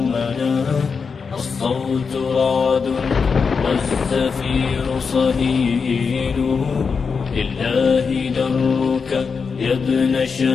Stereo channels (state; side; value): quieter; right; 5.4 dB